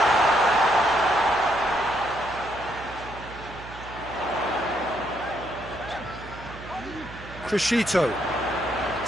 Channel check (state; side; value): noise; right; hum, 15 dB below the sound